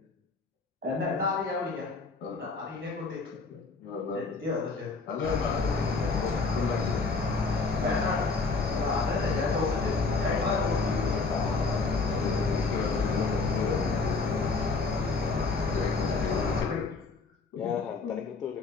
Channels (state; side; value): quieter; right; 4.0 dB